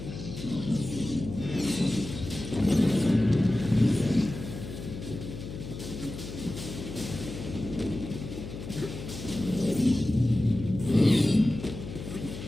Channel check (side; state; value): left; noise; hum, 10 dB below the sound